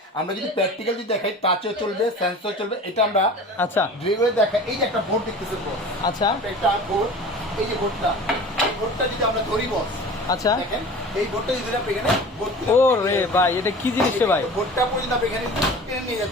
আমরা যদি প্র্যাকটিক্যাল যদি দেখাই, টাচও চলবে, সেন্সর চলবে, এটা আমরা আচ্ছা ভিডিওতে দেখাই। এই যে একটা বোর্ড দেখতেছেন বস, আচ্ছা একটা বোর্ড, এই যে বোর্ডটা, এই বোর্ডটা যদি আমরা ধরি বস, আচ্ছা। দেখেন এই বোর্ডটা যদি আপনি এখানে ও রে ভাই, এটা কি জিনিস রে ভাই? বোর্ডটা পর্যন্ত আপনি এখানে টেনে নিয়ে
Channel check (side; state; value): both; normal; correlation 0.39